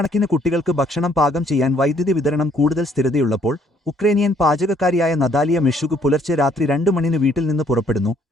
കുട്ടികൾക്ക് ഭക്ഷണം പാകം ചെയ്യാൻ വൈദ്യുതി വിതരണം കൂടുതൽ സ്ഥിരതയുള്ളപ്പോൾ ഉക്രേനിയൻ പാചകക്കാരിയായ നതാലിയ മെഷുക് പുലർച്ചെ രാത്രി 2 മണിന് വീട്ടിൽ നിന്ന് പുറപ്പെടുന്നു,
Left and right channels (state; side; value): normal; both; correlation 0.65